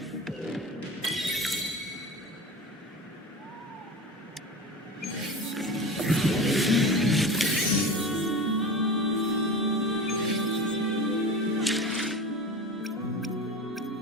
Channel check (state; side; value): normal; both; correlation 0.30